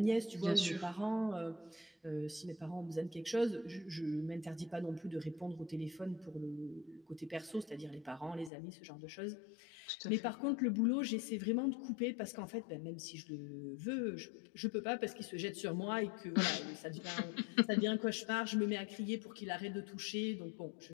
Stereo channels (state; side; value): drops out; right; at 8.5 s